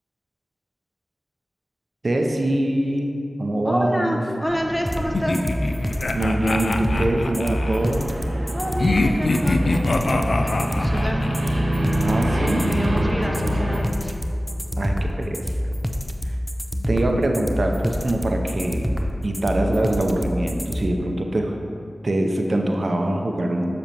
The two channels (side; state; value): both; normal; correlation 0.96